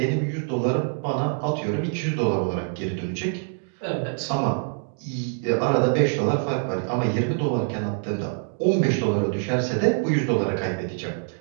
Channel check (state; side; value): silent; left; 57 dB below the other